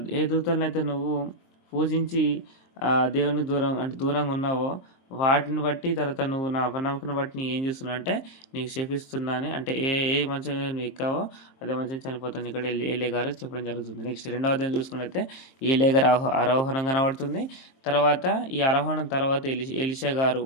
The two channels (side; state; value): right; late; 23 ms